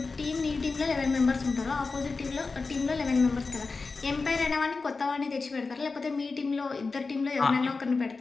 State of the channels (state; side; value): quieter; right; 4.1 dB